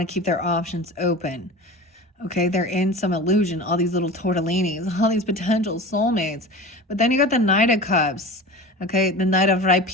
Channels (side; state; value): both; normal; correlation 0.33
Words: to keep their options open. Okay, they're in some illusion, all these little tortellinis, all these potential soulmates. But then you got the Knight of Cups, okay? The Knight of